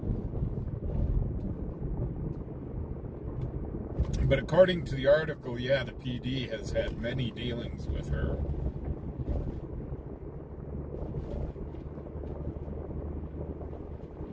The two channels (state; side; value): identical; both; correlation 1.00